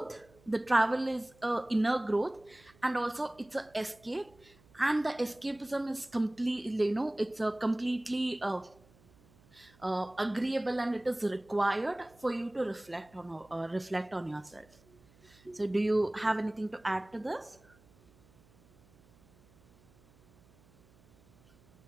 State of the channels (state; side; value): noise; right; hum, 29 dB below the sound